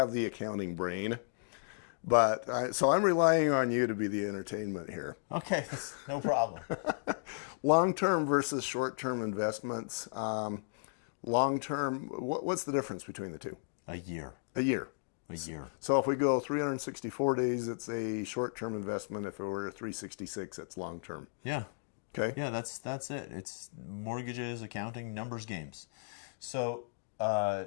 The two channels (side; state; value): right; silent; digital silence